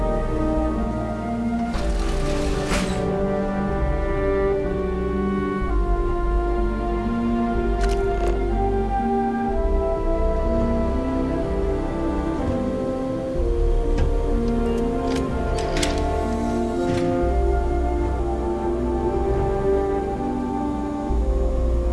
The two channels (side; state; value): both; identical; correlation 1.00